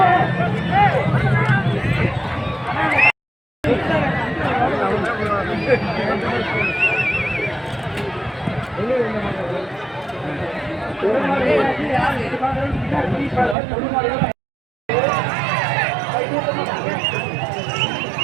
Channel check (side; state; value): left; drops out; at 13.6 s